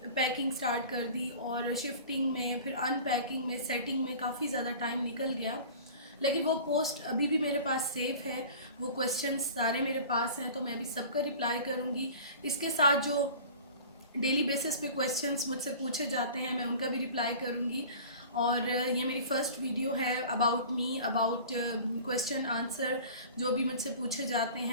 पैकिंग स्टार्ट कर दी और शिफ्टिंग में, फिर अनपैकिंग में, सेटिंग में काफ़ी ज़्यादा टाइम निकल गया। लेकिन वो पोस्ट अभी भी मेरे पास सेव है, वो क्वेश्चंस सारे मेरे पास हैं, तो मैं अभी सबका रिप्लाई करूँगी। इसके साथ जो डेली बेसिस पे क्वेश्चंस मुझसे पूछे जाते हैं मैं उनका भी रिप्लाई करूँगी। और ये मेरी फ़र्स्ट वीडियो है about me, about question answer जो भी मुझसे पूछे जाते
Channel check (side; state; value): both; inverted; correlation -0.40